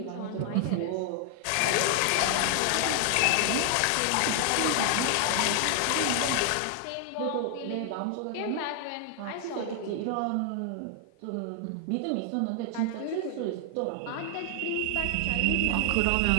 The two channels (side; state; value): both; different; correlation 0.00